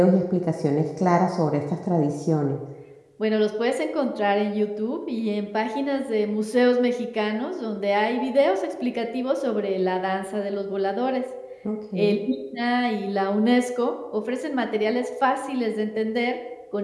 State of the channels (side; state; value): both; identical; correlation 1.00